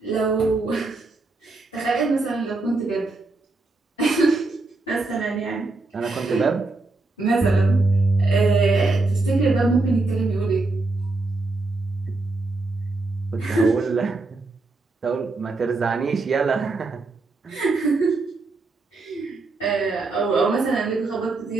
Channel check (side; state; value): left; quieter; 3.4 dB